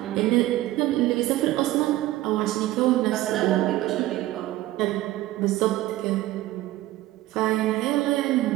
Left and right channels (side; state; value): left; quieter; 16.1 dB